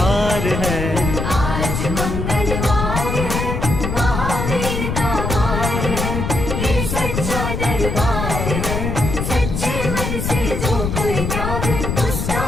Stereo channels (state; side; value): noise; left; rumble, 2 dB below the sound